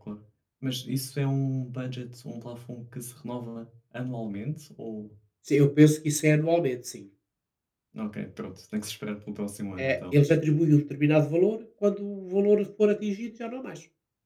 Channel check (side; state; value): both; identical; correlation 1.00